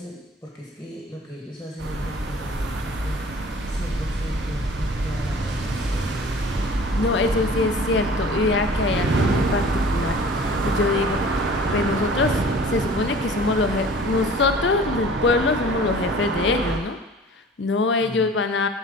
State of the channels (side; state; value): both; normal; correlation 0.46